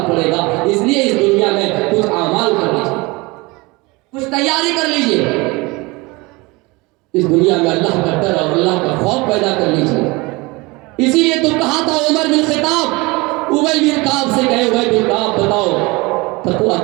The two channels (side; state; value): left; quieter; 24.4 dB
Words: پڑے گا. اس لیے اس دنیا میں کچھ اعمال کر لیجیے, کچھ تیاری کر لیجیے, اس دنیا میں اللہ کا ڈر اور اللہ کا خوف پیدا کر لیجیے. اسی لیے تو کہا تھا عمر بن خطاب, ابی بن کعب سے کہے, ابی بن کعب بتاؤ